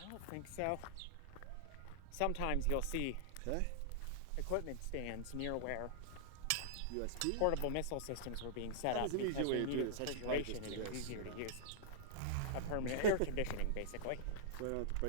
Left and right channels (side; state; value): both; different; correlation -0.02